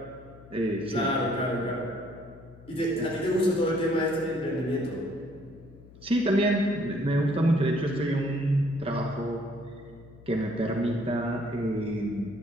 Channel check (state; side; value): noise; left; hum, 21 dB below the sound